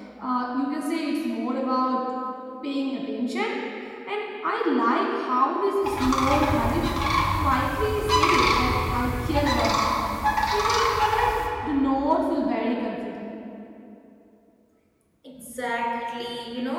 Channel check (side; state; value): both; identical; correlation 1.00